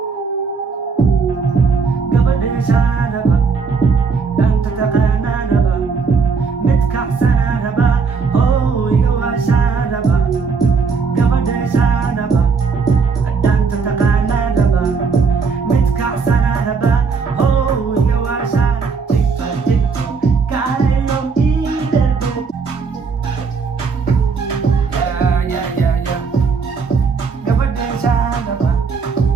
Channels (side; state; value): left; quieter; 5.3 dB